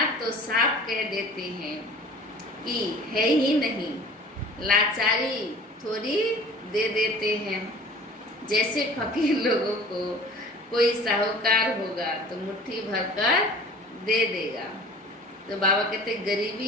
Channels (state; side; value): normal; both; correlation 0.45